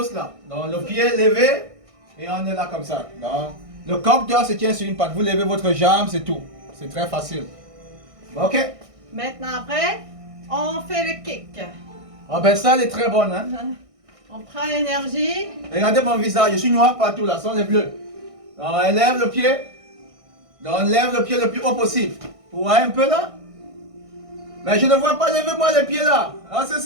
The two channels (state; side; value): late; left; 1.6 ms